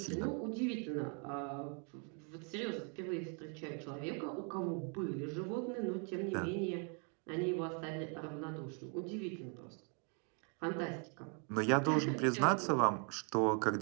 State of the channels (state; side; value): quieter; left; 39.0 dB